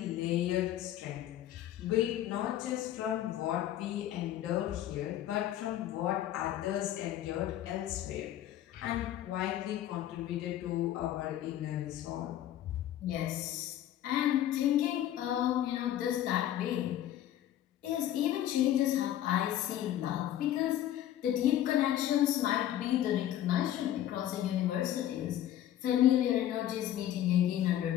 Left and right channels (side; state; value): right; quieter; 12.2 dB